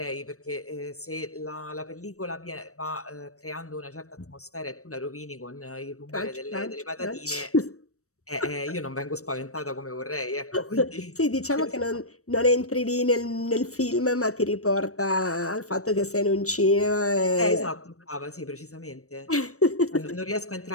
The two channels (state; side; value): late; right; 0.65 ms